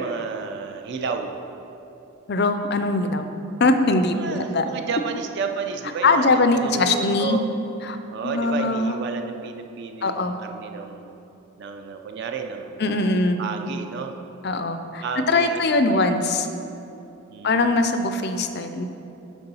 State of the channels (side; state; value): both; normal; correlation 0.14